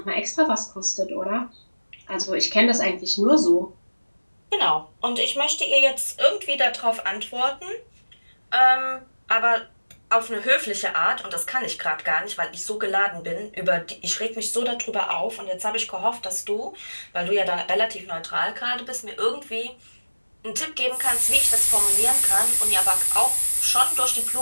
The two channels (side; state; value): both; inverted; correlation -1.00